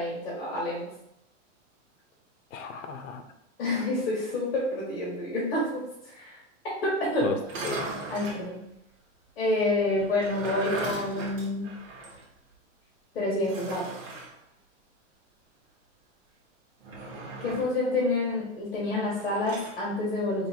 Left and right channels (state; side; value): normal; both; correlation 0.25